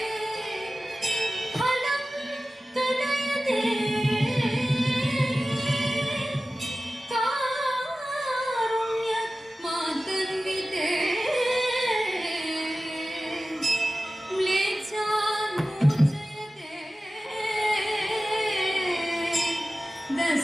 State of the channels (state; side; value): normal; both; correlation 0.96